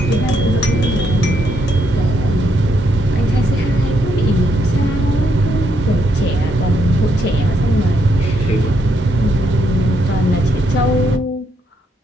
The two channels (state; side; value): normal; both; correlation 0.76